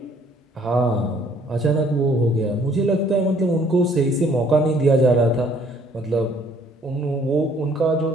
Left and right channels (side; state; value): both; normal; correlation 0.61